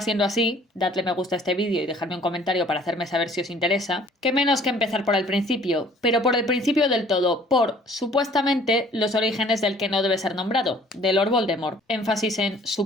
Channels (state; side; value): normal; both; correlation 0.55